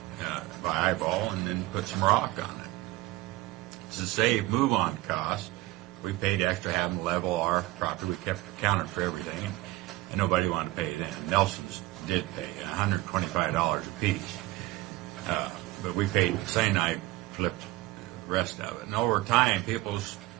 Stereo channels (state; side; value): quieter; left; 18.7 dB